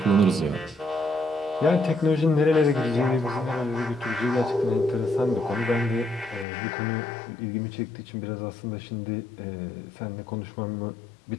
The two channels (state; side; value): drops out; right; at 6.5 s